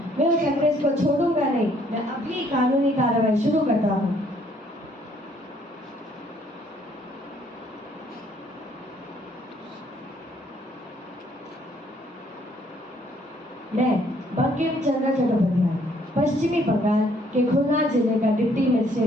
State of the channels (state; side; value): normal; both; correlation 0.64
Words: मैं उस अंग्रेज को छोड़ूंगा नहीं। मैं अभी कानूनी कार्रवाई शुरू करता हूँ। मैं बंकिम चंद्र चट्टोपाध्याय पश्चिमी बंगाल के खुलना जिले का डिप्टी